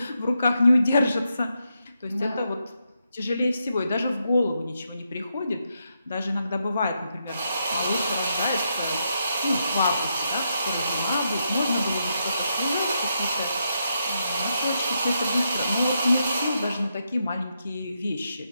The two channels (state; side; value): inverted; both; correlation -0.82